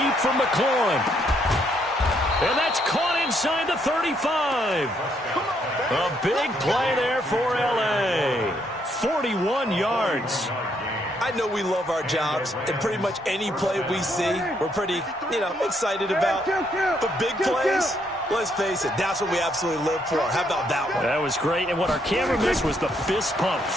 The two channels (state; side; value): normal; both; correlation 0.73